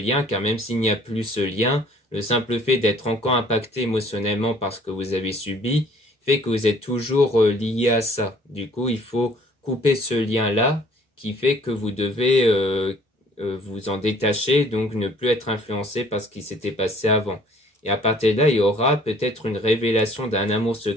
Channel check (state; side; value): normal; both; correlation 0.56